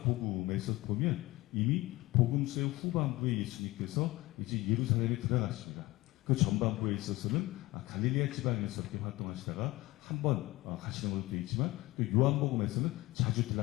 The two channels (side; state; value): right; quieter; 19.8 dB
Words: 복음에서 보면 이미 복음서의 후반부에 예수님께서 이제 예루살렘에 들어가십니다. 그 전반부에 있어서는 갈릴리아 지방에서 이렇게 활동하시다가 한 번 가시는 걸로 되어 있지만, 또 요한복음에서는 자주